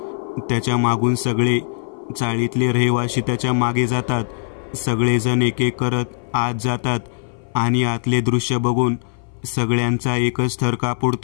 त्याच्या मागून सगळे चाळीतले रहिवासी त्याच्या मागे जातात. सगळेजण एक एक करत आत जातात आणि आतले दृश्य बघून सगळ्यांचा एकच थर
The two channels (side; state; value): right; silent; 59 dB below the other